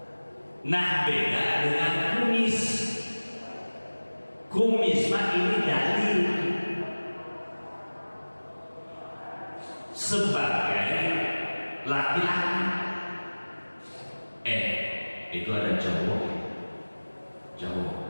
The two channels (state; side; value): inverted; both; correlation -1.00